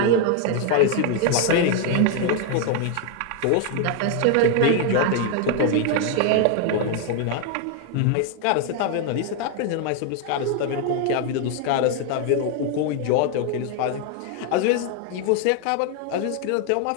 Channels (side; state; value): both; different; correlation 0.01